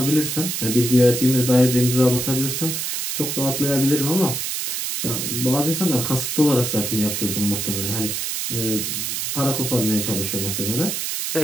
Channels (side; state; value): right; noise; hiss, 2 dB below the sound